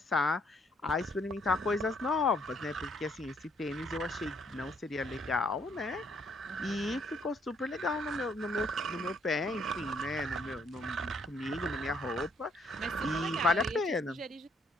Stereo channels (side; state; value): both; normal; correlation 0.69